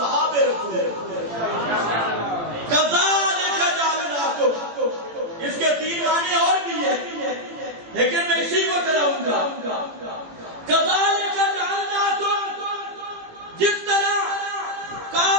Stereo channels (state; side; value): late; left; 18 ms